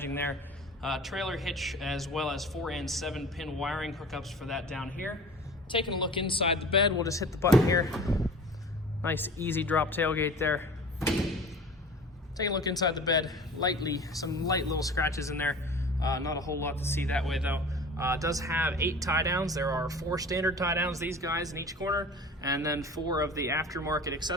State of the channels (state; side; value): normal; both; correlation 0.40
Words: there. Trailer hitch, as well as 4 and 7 pin wiring hookups for that down here. Taking a look inside the bed, we'll just hit the button here. Nice easy drop tailgate there. Taking a look inside the bed, some light little scratches in there. Not a whole lot to see that way though. It does have 8 tie downs. There are 4 standard tie downs, these guys in each corner, and then 4 of the aftermarket